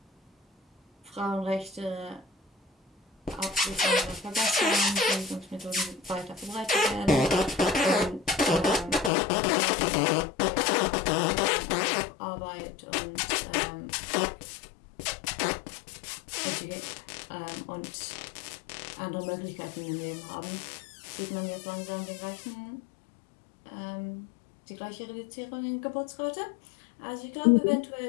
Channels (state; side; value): drops out; right; at 9.1 s